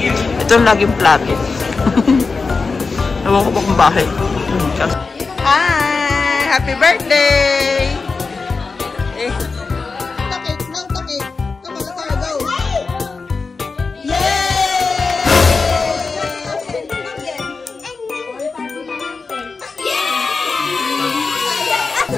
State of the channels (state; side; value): quieter; right; 4.4 dB